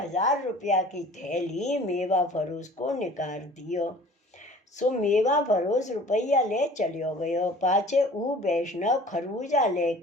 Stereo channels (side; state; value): both; normal; correlation 0.47